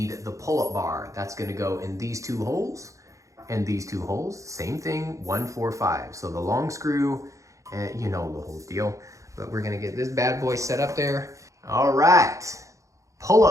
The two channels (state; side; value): late; left; 0.15 ms